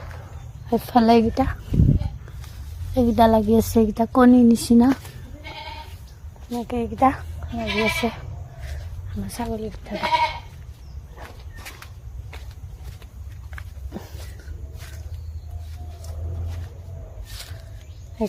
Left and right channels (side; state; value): both; identical; correlation 1.00